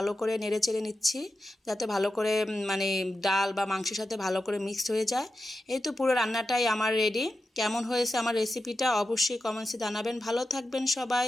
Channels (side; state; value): both; normal; correlation 0.91